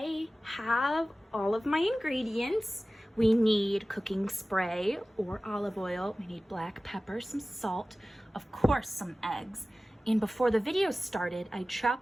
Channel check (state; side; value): normal; both; correlation 0.97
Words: have all of my ingredients. We need cooking spray or olive oil. We need black pepper, some salt, of course, some eggs. And before the video started, I